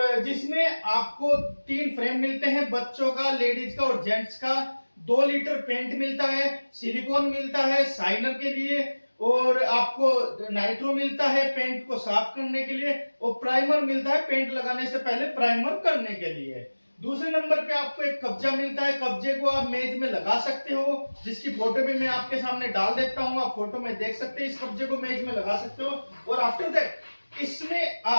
जिसमें आपको 3 फ्रेम मिलते हैं, बच्चों का, लेडीज का और जेंट्स का। 2 लीटर पेंट मिलता है, सिलिकॉन मिलता है शाइनर के लिए और आपको नाइट्रो मिलता है पेंट को साफ करने के लिए और प्राइमर मिलता है पेंट लगाने से पहले प्राइमर करने के लिए। दूसरे नंबर पे आपको एक कब्जा मिलता है। कब्जे को आप मेज में लगा सकते हो, जिसकी फोटो भी मैं आपके सामने डाल देता हूं, आप फोटो में देख सकते हैं। इस कब्जे को मेज में लगा सकते हो और आफ्टर दैट इसमें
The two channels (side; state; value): both; inverted; correlation -1.00